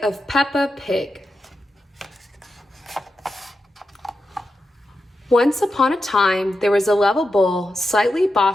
Peppa Pig. Once upon a time, there was a lovable, slightly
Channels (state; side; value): normal; both; correlation 0.89